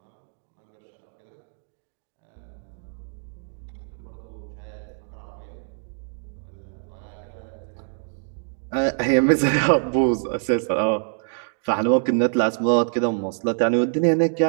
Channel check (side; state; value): left; silent; 57 dB below the other